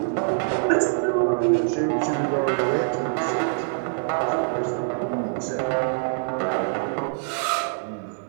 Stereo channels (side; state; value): left; silent; 62 dB below the other